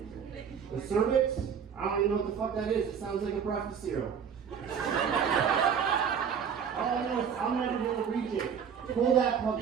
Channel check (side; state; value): left; quieter; 7.3 dB